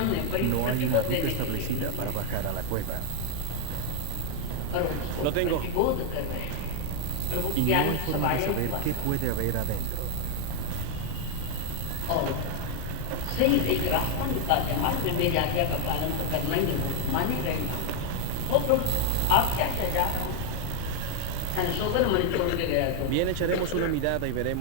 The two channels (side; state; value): both; different; correlation 0.00